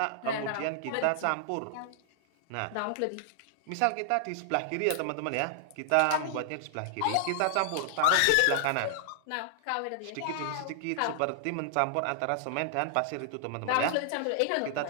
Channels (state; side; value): different; both; correlation -0.01